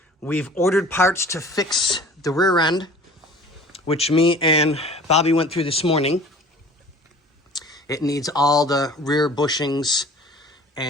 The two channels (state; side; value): normal; both; correlation 0.45